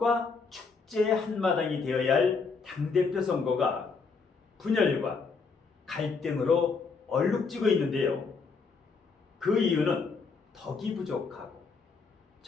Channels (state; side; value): quieter; right; 4.8 dB